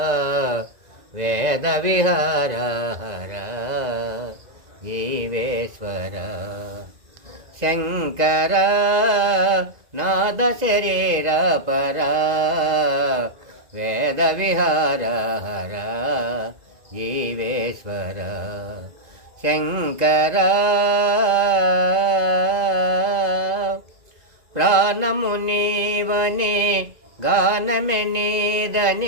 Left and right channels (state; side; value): late; left; 2.0 ms